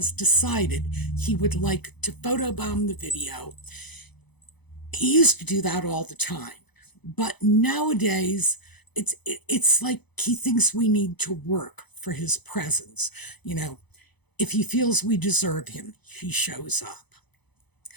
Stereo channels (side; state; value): right; late; 0.99 ms